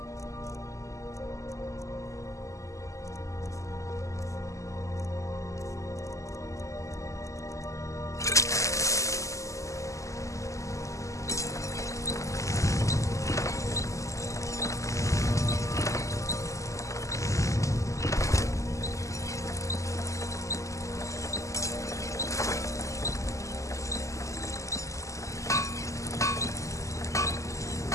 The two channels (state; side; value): late; right; 0.16 ms